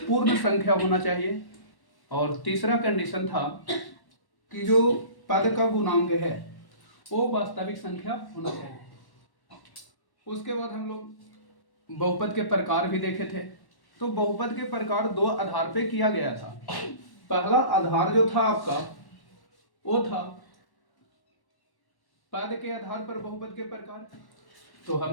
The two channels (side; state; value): right; late; 1.1 ms